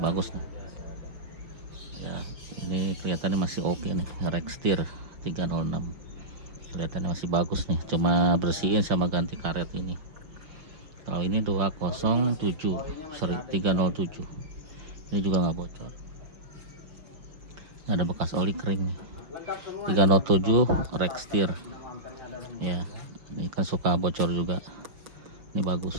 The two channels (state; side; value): late; left; 5.9 ms